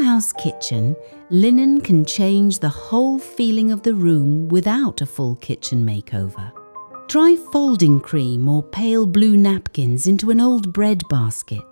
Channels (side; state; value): both; inverted; correlation -1.00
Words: kitchen, linen can change the whole feeling of the room without a full kitchen makeover. Try folding cream or pale blue napkins into an old bread